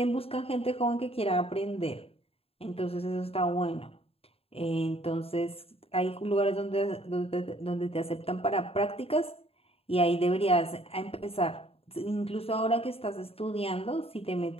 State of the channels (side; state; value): right; late; 0.28 ms